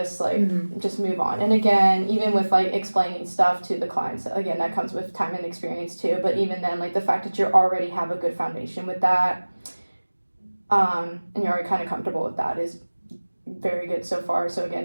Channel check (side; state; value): both; inverted; correlation -1.00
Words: like just move on. And again, even with like explaining stuff to the clients, again, that comes with time and experience too. But even then, like the fact that you already have a good foundation with that, and you're already kind of comfortable with that, is very good so far. So